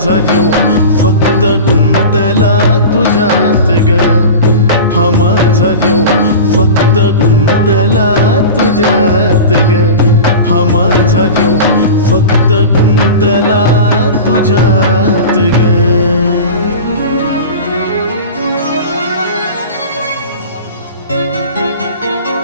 जीव फक्त गुंतला तुझ्यात ग. हा माझा जीव फक्त गुंतला तुझ्यात ग. हा माझा जीव फक्त गुंतला तुझ्यात ग.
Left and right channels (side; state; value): both; inverted; correlation -0.32